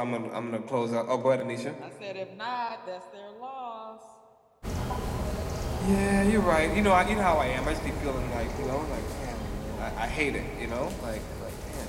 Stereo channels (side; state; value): both; identical; correlation 1.00